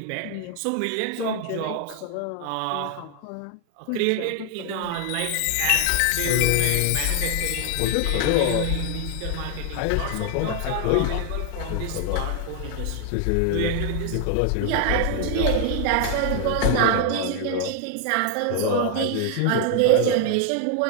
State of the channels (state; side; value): different; both; correlation 0.00